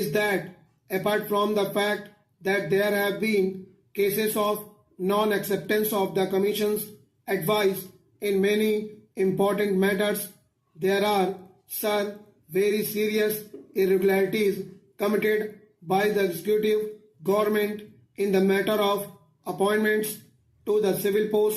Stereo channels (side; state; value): both; identical; correlation 1.00